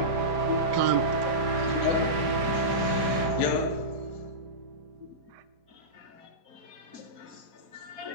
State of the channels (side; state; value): left; late; 4.9 ms